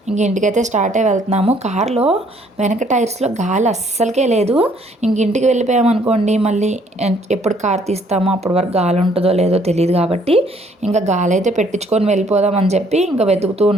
ఇంక ఇంటికైతే స్టార్ట్ అయ్యి వెళ్తున్నాము. కారులో వెనక టైర్స్లో గాలి అస్సలకే లేదు. ఇంక ఇంటికి వెళ్ళిపోయామనుకోండి, మళ్ళీ ఎప్పుడు కార్ తీస్తామో అప్పటి వరకు గాలి ఉంటుందో లేదో తెలియదు కాబట్టి ఇంకా గాలి అయితే పెట్టించుకొని వెళ్ళిపోదామని చెప్పి ఇంకా వెతుకుతూ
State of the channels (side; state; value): both; normal; correlation 0.63